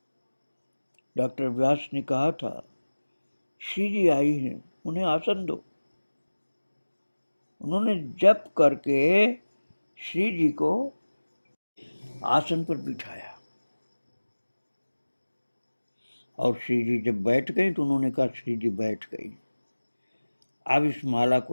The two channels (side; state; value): both; inverted; correlation -1.00